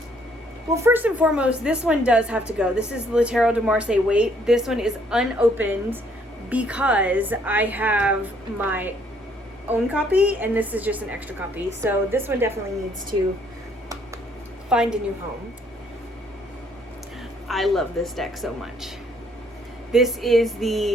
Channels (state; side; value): normal; both; correlation 0.66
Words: Well, first and foremost, this one does have to go. This is the Tarot de Marseille Wait. This one is unopened because I have my own copy, and this is just an extra copy. So this one definitely needs to find a new home. I love this deck so much. This is